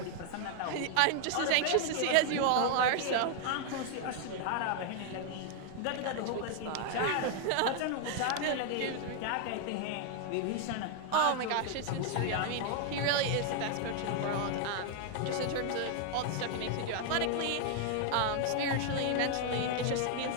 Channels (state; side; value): different; both; correlation 0.00